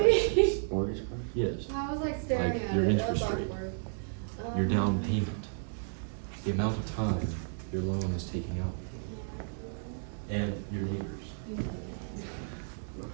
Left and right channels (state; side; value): silent; left; digital silence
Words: Mortgage card? Yes, I was like staring Like at your it. interest That's rate. awkward. your down payment, the amount of time your loan is taking out, and your neighbors, and your